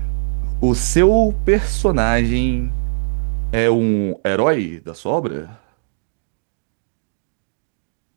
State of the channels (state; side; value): silent; left; digital silence